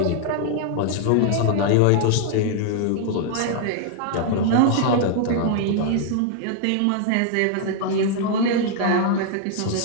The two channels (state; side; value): different; both; correlation 0.00